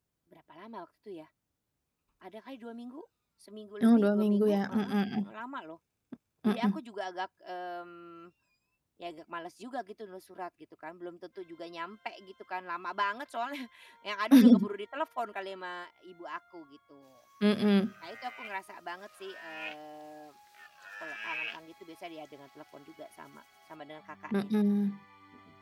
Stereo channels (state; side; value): identical; both; correlation 1.00